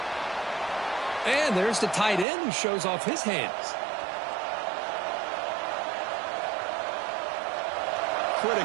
And there's the tight end who shows off his hands.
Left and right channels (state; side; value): drops out; left; at 2.2 s